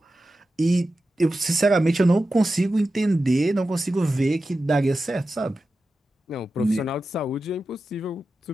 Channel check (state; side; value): normal; both; correlation 0.92